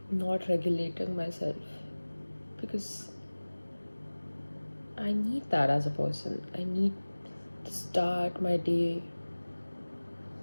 not regulating myself? Because I need that as a person. I need to start my day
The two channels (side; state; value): both; inverted; correlation -1.00